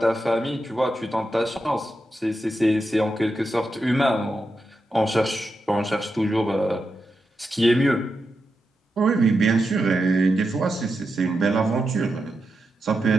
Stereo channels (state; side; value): normal; both; correlation 0.87